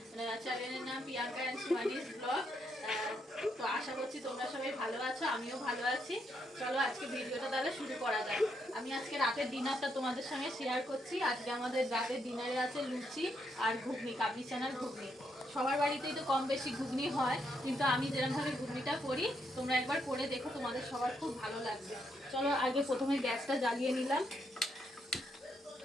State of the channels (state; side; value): normal; both; correlation 0.77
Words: চ্যানেলের নাম প্রিয়াঙ্কা এন্ড সুহানিস ব্লগ। তো আশা করছি তোমরা সবাই ভালো আছো, আমিও ভালো আছি। চলো আজকে ভিডিওটা তাহলে শুরু করা যাক। আমি আজকে রাতের ডিনারটা তোমাদের সঙ্গে শেয়ার করছি। আজকে আমাদের রাতের ডিনারে আছে লুচি আর ঘুগনি, কাবলি চানার ঘুগনি। সবার বাড়িতেই তো কম বেশি ঘুগনি হয়, কিন্তু আমি যেরকমভাবে ঘুগনিটা করি তোমরা একবার করে দেখো, তোমাদের সবার খুব ভালো লাগবে। চলো আগে প্রথমে গ্যাসটা জ্বালিয়ে নিলাম।